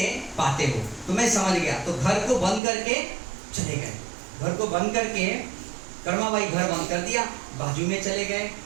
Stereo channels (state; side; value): drops out; left; at 2.6 s